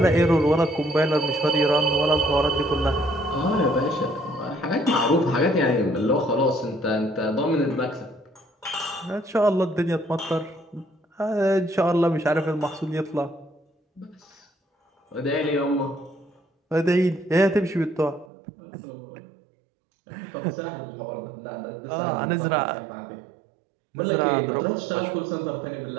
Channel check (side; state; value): left; drops out; at 18.2 s